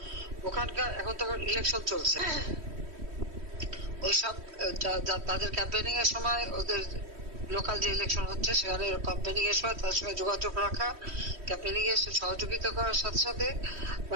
ওখানকার এখন তো ইলেকশন চলছে, ওইসব তাদের ক্যাম্পেনিং এর সময়, ওদের লোকাল যে ইলেকশন হচ্ছে সেখানে ক্যাম্পেনিং এর সময় তার সঙ্গে যোগাযোগ রাখা, ক্যাম্পেনিং এর সহযোগিতা করার সাথে সাথে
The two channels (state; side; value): late; left; 3.1 ms